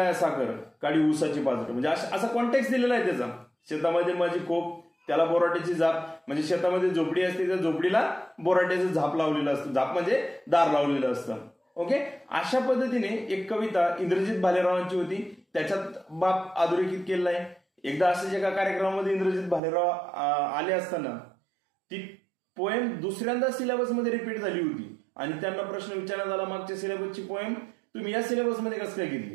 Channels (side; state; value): left; drops out; at 19.6 s